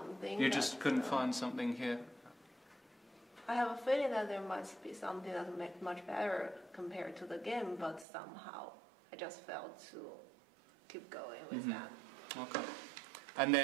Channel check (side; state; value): left; drops out; at 8.1 s